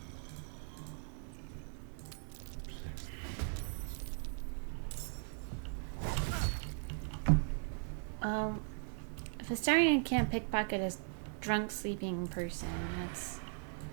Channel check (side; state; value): left; silent; 52 dB below the other